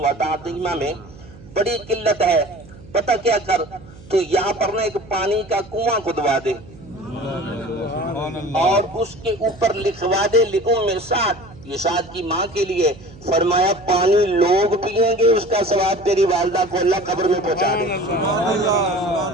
تعظیما میں بڑی قلت ہے، پتہ کیا کر تو یہاں پر نا ایک پانی کا کنواں کھدوا دے اور اس کے اوپر لکھوا دے لِأُمِّ سعد، یہ سعد کی ماں کے لیے، فرمایا پانی لوگ پئیں گے اس کا ثواب تیری والدہ کو اللہ قبر میں پہنچا دے۔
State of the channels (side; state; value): right; noise; hum, 20 dB below the sound